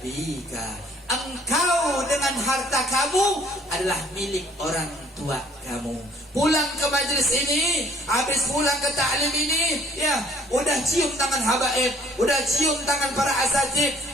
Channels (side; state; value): both; normal; correlation 0.57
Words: Engkau dengan harta kamu adalah milik orang tua kamu. Pulang ke majlis ini, habis pulang ke ta'lim ini, ya, udah cium tangan habaib, udah cium tangan para asatid,